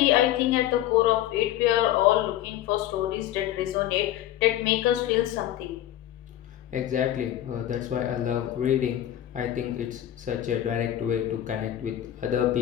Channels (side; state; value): right; quieter; 12.6 dB